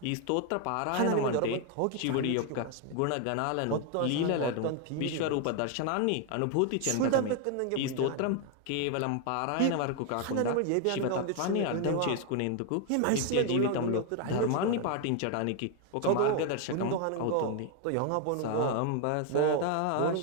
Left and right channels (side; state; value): both; different; correlation 0.01